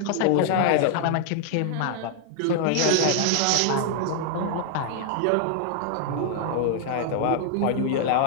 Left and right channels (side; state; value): both; different; correlation 0.00